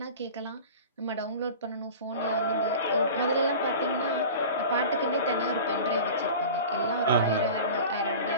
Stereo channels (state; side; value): inverted; both; correlation -0.36